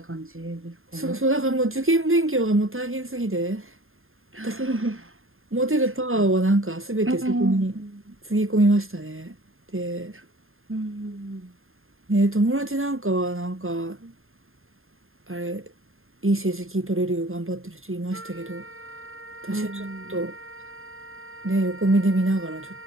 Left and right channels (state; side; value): late; left; 0.60 ms